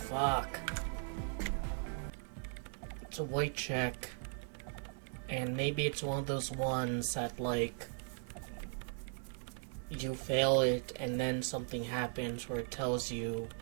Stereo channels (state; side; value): silent; left; 52 dB below the other